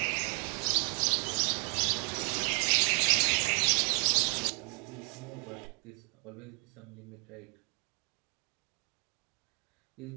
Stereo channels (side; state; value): left; quieter; 36.8 dB